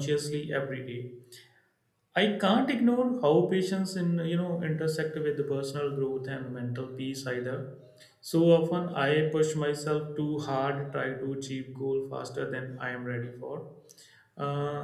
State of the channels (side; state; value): both; identical; correlation 1.00